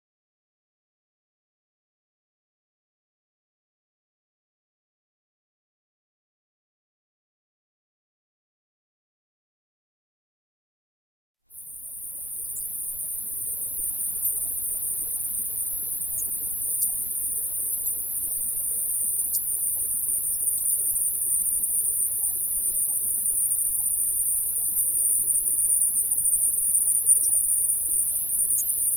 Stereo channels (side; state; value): both; normal; correlation 0.93